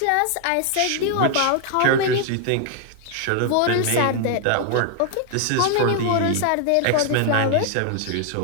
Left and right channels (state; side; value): different; both; correlation 0.00